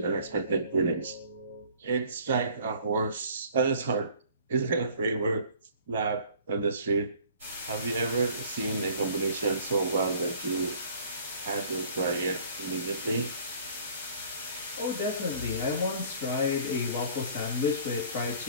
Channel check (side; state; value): both; inverted; correlation -0.52